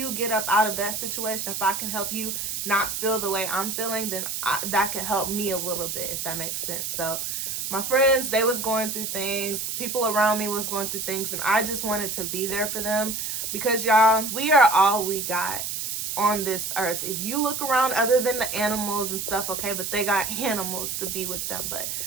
get up out of that situation, if I can help you not feel the way I'm feeling, then that can help me a little bit, if that makes sense. So my friends, they was going through things. People around me was going through things. And I just wanted to be there for them. Because y'all, we are all we got on this earth. If you look around, other than the animals and stuff, okay, but they got animals to be with them. But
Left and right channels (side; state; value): right; noise; hiss, 3 dB below the sound